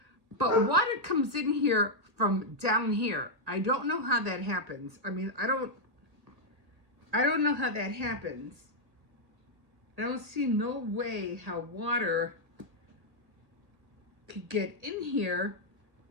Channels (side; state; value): left; late; 1.8 ms